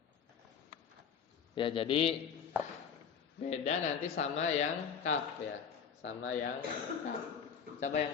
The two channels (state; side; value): quieter; right; 7.2 dB